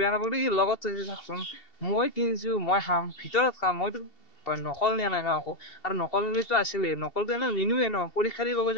নাপালো, ই লগত থৈছে চাওকচোন। মই কিনিছো, মই খাম, ভিতৰত খাম, মইতো নকল নিয়া নাই ন আকৌ। আৰু নকলটো আছিলে, নকলটো এনে নিনোৱে ন, পৰীক্ষা দিব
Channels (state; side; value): late; right; 2.7 ms